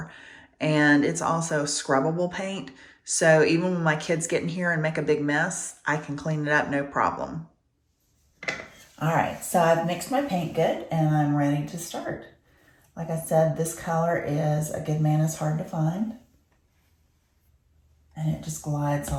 And it's also scrubbable paint, so even when my kids get in here and make a big mess, I can clean it up no problem. All right, so I've mixed my paint good and I'm ready to start. Like I said, this color is A Good Man Is Hard to Find. And it just glides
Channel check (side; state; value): both; identical; correlation 1.00